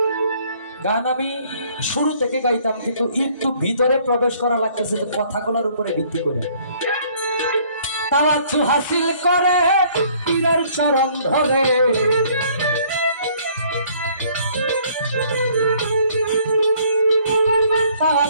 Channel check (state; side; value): inverted; both; correlation -0.60